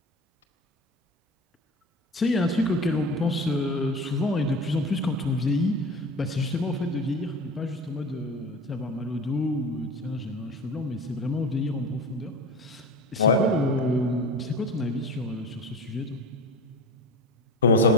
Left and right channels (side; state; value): both; normal; correlation 0.31